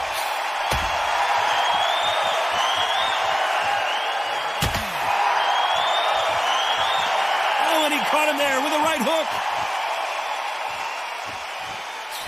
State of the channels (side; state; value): both; identical; correlation 1.00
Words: Oh, and he caught him there with a right hook.